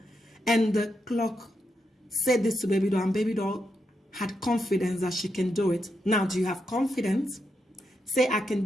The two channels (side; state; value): both; normal; correlation 0.83